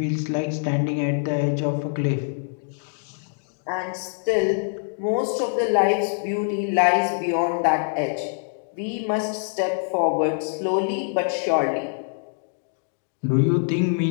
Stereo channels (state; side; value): silent; right; digital silence